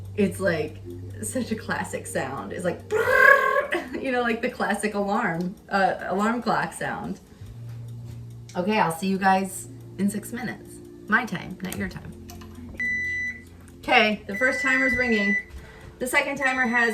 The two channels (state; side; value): identical; both; correlation 1.00